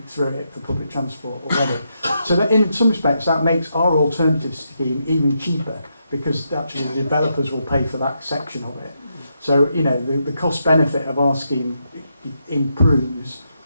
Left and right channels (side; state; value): both; inverted; correlation -0.82